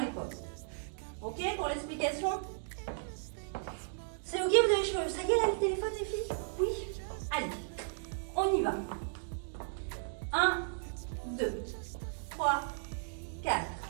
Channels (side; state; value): left; silent; digital silence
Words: Ok pour l'explication? C'est ok, vous avez chaud. Ça y est, là, le téléphone, les filles? Oui? Allez, on y va. 1, 2, 3, 4.